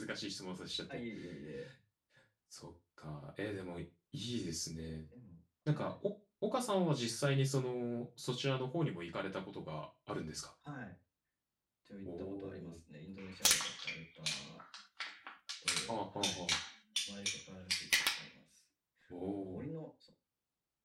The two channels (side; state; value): both; identical; correlation 1.00